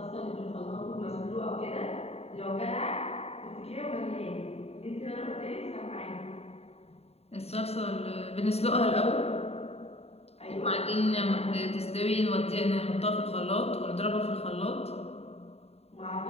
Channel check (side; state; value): right; late; 0.30 ms